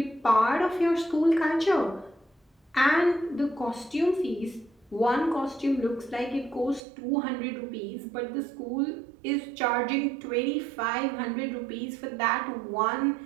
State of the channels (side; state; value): left; drops out; at 6.8 s